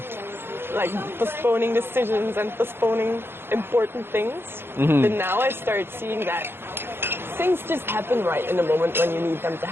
Like postponing decisions and postponing important things. But now I start seeing that things just happen right in the moment when you need them to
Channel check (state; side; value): late; left; 0.11 ms